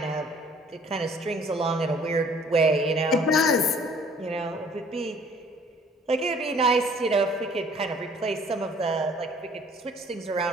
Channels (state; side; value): normal; both; correlation 0.55